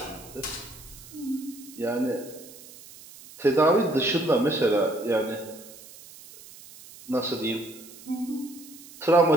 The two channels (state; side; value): noise; right; hiss, 19 dB below the sound